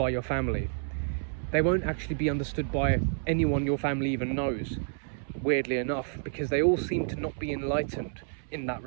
your family. They won't actually be understood by anyone your family even knows, weirdly enough, because they all seem to not be enlightened in that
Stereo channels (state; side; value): silent; left; 58 dB below the other